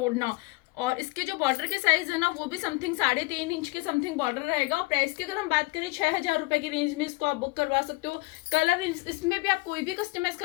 और इसके जो बॉर्डर के साइज है ना वो भी समथिंग 3.5 इंच के समथिंग बॉर्डर रहेगा। और प्राइस की अगर हम बात करें 6000 रुपए की रेंज में इसको आप बुक करवा सकते हो। कलर इसमें भी आप कोई भी कस्टमाइज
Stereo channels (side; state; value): right; quieter; 24.5 dB